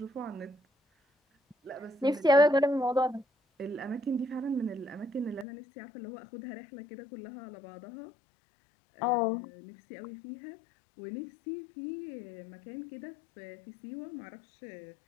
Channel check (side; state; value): right; drops out; at 5.5 s